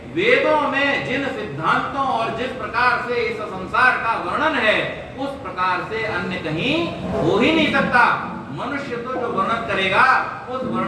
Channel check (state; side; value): identical; both; correlation 1.00